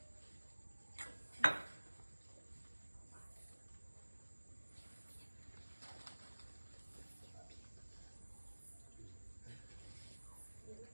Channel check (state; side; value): inverted; both; correlation -1.00